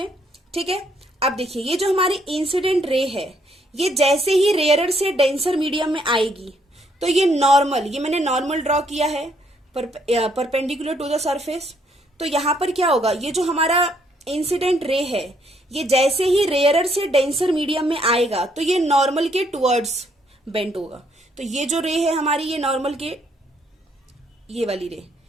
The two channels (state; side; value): normal; both; correlation 0.70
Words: ठीक है, अब देखिए ये जो हमारी इंसिडेंट रे है ये जैसे ही रेयरर से डेंसर मीडियम में आएगी तो ये नॉर्मल, ये मैंने नॉर्मल ड्रॉ किया है परपेंडिकुलर टू द सरफेस. तो यहां पर क्या होगा, ये जो हमारा इंसिडेंट रे है ये जैसे ही रेयरर से डेंसर मीडियम में आएगा तो ये नॉर्मल के टुवर्ड्स बेंट होगा. तो ये जो रे है हमारी ये नॉर्मल के, ये वाली रे